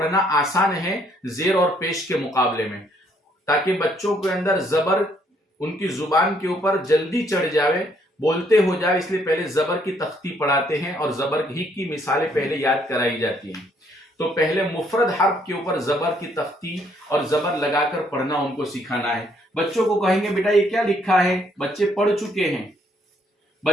आसान है जेर और पेश के मुकाबले में, ताकि बच्चों के अंदर जबर उनकी जुबान के ऊपर जल्दी चढ़ जावे, बोलते हो जाए। इसलिए पहले जबर की तख्ती पढ़ाते हैं और जबर ही की मिसालें पहले याद कराई जाती हैं। तो पहले मुफरद हर्फ के ऊपर जबर की तख्ती और जबर लगाकर पढ़ना उनको सिखाना है। बच्चों को कहेंगे बेटा ये क्या लिखा है? बच्चे पढ़ चुके हैं,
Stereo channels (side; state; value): both; normal; correlation 0.68